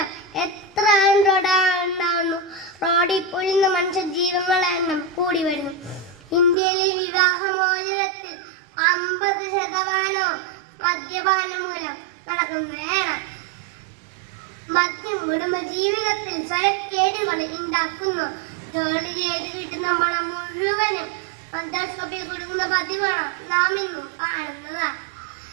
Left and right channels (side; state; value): left; drops out; at 6.6 s